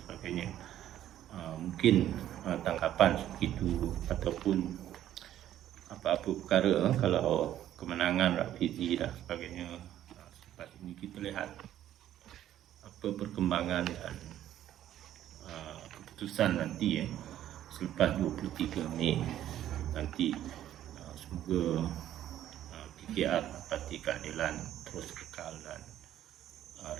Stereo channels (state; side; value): quieter; left; 12.0 dB